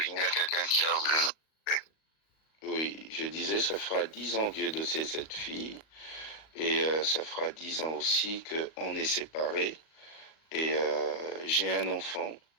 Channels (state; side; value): late; right; 38 ms